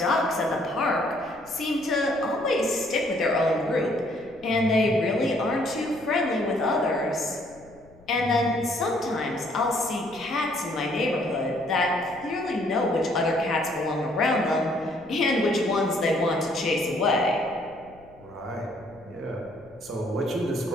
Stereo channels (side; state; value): left; noise; rumble, 26 dB below the sound